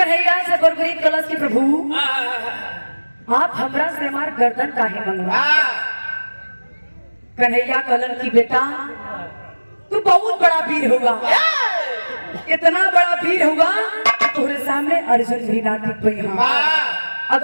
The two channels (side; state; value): both; inverted; correlation -1.00